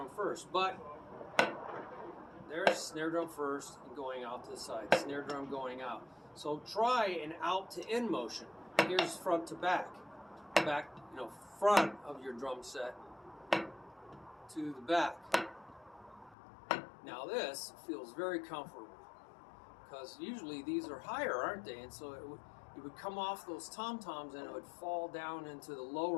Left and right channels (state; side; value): drops out; right; at 16.4 s